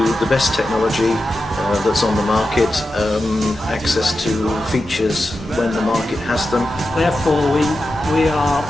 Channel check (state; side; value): normal; both; correlation 0.91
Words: the best technology that's on the market, access to features when the market has them. Therefore we are